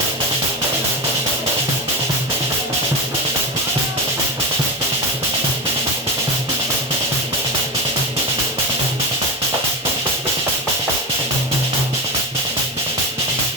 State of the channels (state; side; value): normal; both; correlation 0.20